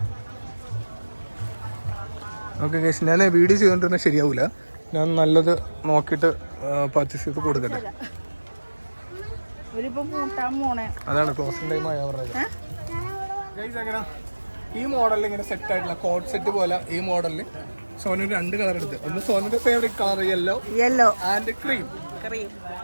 ഓക്കെ ഗൈസ്, ഞാൻ വീഡിയോ ചെയ്തുകൊണ്ടിരുന്നാൽ ശരിയാവില്ല. ഞാൻ നല്ലത് നോക്കിയിട്ട് പർച്ചേസ് ചെയ്ത് കൊടുക്കട്ടെ. അതാണ് ക്ലോസിംഗ് ടൈം ആയ പറഞ്ഞത്. ഗൈസ്, എങ്ങനെ ഈ മോഡലിൽ ഇങ്ങനെ സെറ്റ് ആയിട്ടുള്ള കോട്ട് സെറ്റ് പോലെ ഈ മോഡലിൽ സോനു 2 കളർ എടുത്ത്. ഒന്ന് സോനുന്റെ favourite colour yellow and cream.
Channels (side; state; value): both; inverted; correlation -1.00